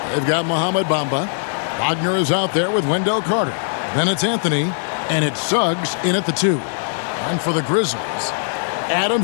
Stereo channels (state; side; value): silent; right; digital silence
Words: They've got Mohamed Bamba. Wagner is out there with Wendell Carter. Then it's Anthony, and it's Suggs in at the 2. And for the Grizzlies,